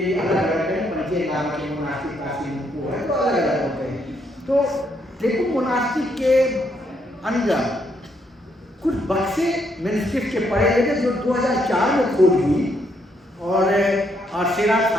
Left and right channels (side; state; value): both; normal; correlation 0.74